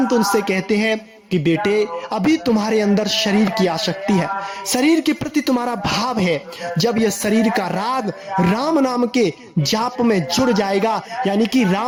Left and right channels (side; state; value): both; identical; correlation 1.00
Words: उनसे कहते हैं कि बेटे अभी तुम्हारे अंदर शरीर की आसक्ति है, शरीर के प्रति तुम्हारा भाव है। जब यह शरीर का राग राम नाम के जाप में जुड़ जाएगा, यानी कि